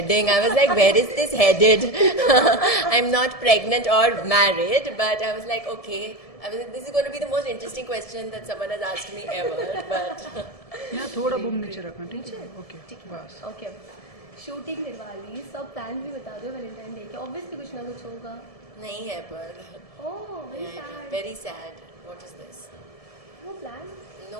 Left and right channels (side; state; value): right; late; 1.7 ms